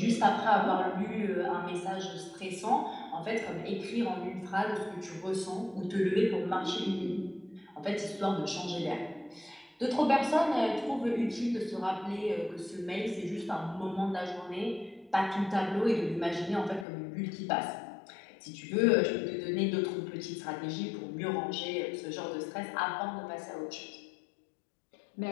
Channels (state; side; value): drops out; right; at 16.9 s